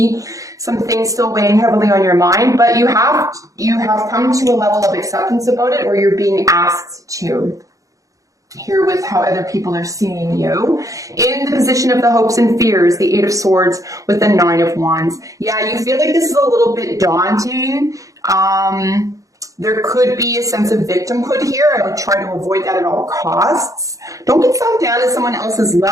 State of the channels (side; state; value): left; late; 0.16 ms